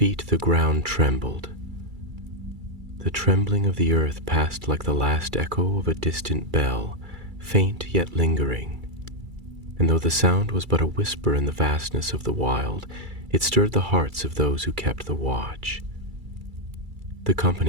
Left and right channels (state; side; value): late; left; 2.3 ms